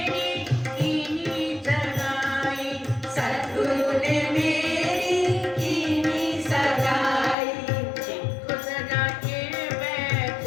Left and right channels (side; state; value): right; drops out; at 7.4 s